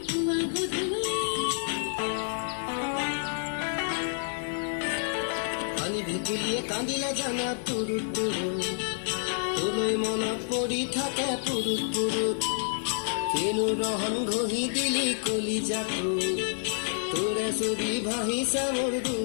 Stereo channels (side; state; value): right; silent; 56 dB below the other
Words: পুয়া গুধুলে পানি ভিতুলিয়ে কান্দিলে জানা তুরু তুরু তুলোই মন পৰি থাকে পুরুত পুরুত কেনু রহন ঘহি দিলি কলিজাটো তোরে ছবি ভাহিছে মোৰ